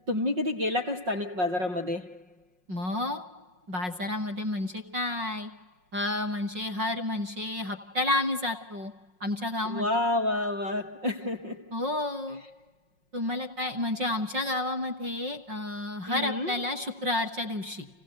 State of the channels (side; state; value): left; late; 5.5 ms